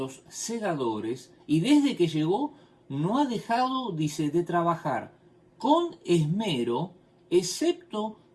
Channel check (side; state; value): both; identical; correlation 1.00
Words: segadores, y desde que llegó no ha dejado, dice, de trabajar con esmero, excepto